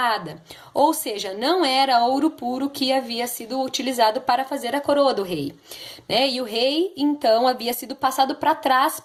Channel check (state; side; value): identical; both; correlation 1.00